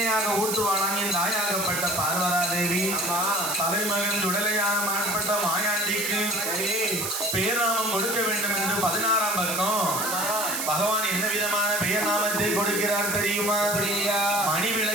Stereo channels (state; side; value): noise; right; hiss, 2 dB below the sound